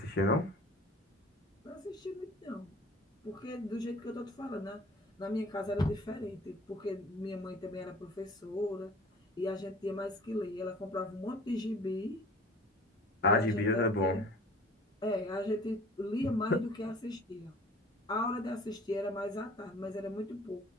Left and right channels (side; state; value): both; normal; correlation 0.47